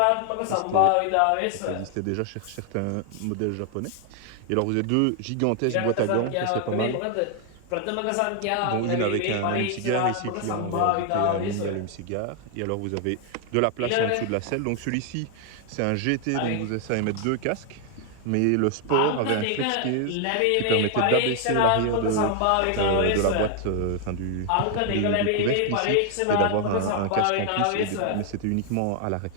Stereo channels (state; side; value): different; both; correlation 0.00